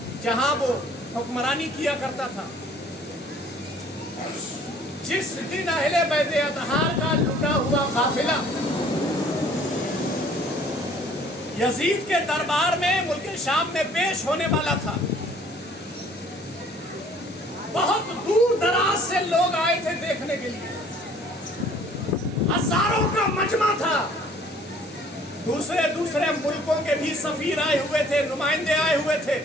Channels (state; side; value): normal; both; correlation 0.55